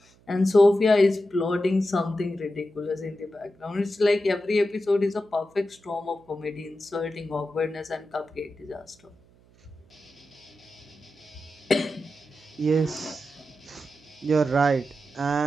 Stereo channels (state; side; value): noise; right; hum, 30 dB below the sound